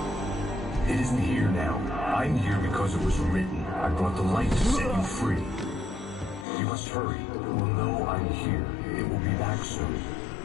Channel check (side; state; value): right; drops out; at 6.5 s